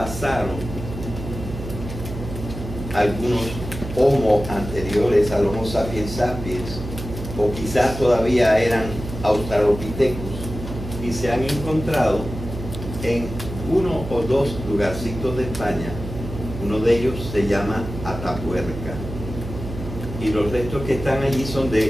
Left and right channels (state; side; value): noise; right; hum, 9 dB below the sound